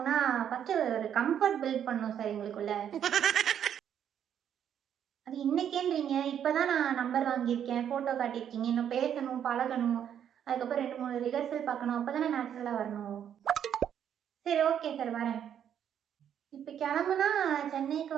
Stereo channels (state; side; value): quieter; left; 9.2 dB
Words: ஃபஸ்ட்டு ஒரு கம்ஃபர்ட் பில்ட் பண்ணணும் சார் எங்களுக்குள்ள. அது இன்னைக்கேன்றீங்க, இப்போதான் நான் நம்பர் வாங்கியிருக்கேன், ஃபோட்டோ காட்டியிருக்கீங்க, இன்னும் பேசணும், பழகணும், அதுக்கப்புறம் 2-3 ரிஹர்சல் பார்க்கணும், அப்போ தானே நேச்சுரலாக வரணும். சரி ஓகே சார், வரேன். இப்போ கிளம்புனா சென்னைக்கு